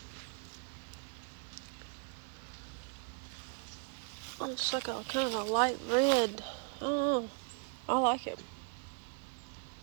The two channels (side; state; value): left; quieter; 39.5 dB